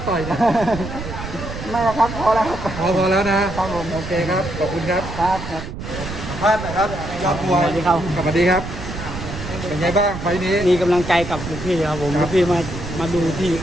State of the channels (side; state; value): right; noise; rumble, 9 dB below the sound